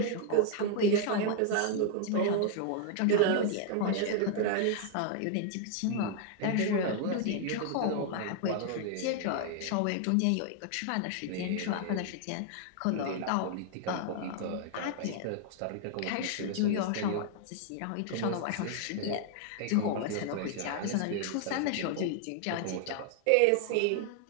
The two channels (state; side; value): different; both; correlation 0.00